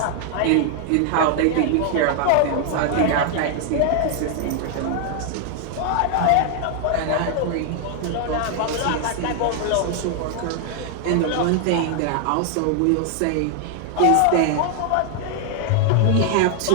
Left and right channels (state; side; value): different; both; correlation 0.00